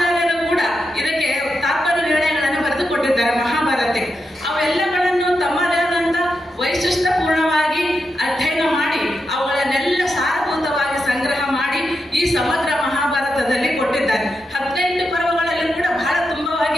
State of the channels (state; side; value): normal; both; correlation 0.86